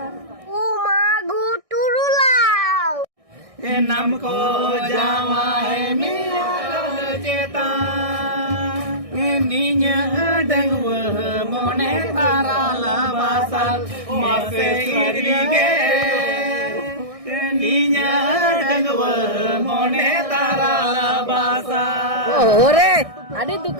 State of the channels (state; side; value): late; left; 1.6 ms